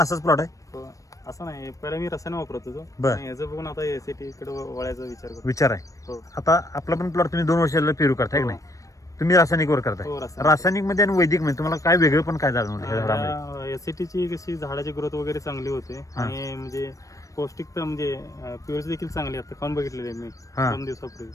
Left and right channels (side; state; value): right; late; 0.16 ms